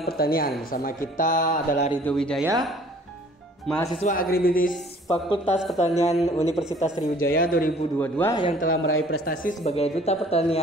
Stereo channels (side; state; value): both; normal; correlation 0.54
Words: pertanian. Bersama kita adalah Ridho Wijaya, mahasiswa agribisnis Fakultas Pertanian Universitas Sriwijaya 2022 yang telah meraih prestasi sebagai Duta